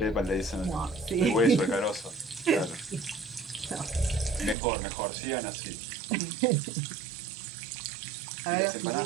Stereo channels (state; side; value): drops out; left; at 4.5 s